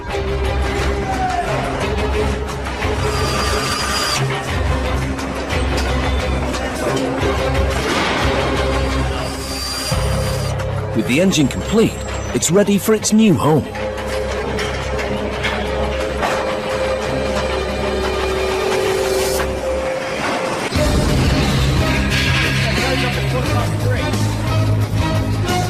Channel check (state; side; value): identical; both; correlation 1.00